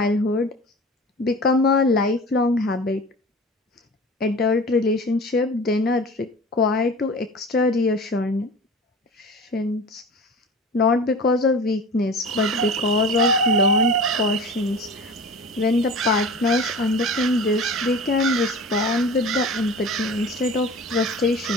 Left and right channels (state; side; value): normal; both; correlation 0.38